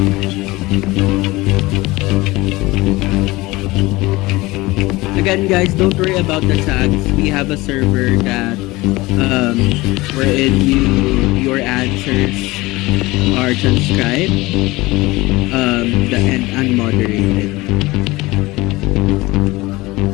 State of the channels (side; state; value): right; quieter; 20.8 dB